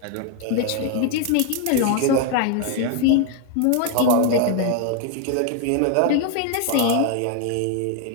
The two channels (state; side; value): different; both; correlation 0.00